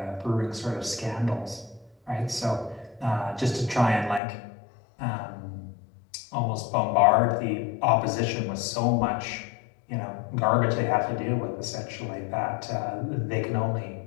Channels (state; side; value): drops out; right; at 4.2 s